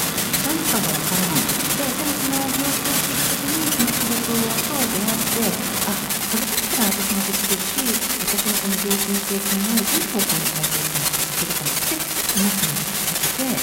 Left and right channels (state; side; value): identical; both; correlation 1.00